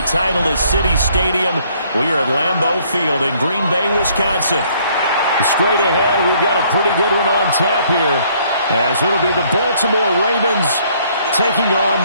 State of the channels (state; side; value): inverted; both; correlation -0.63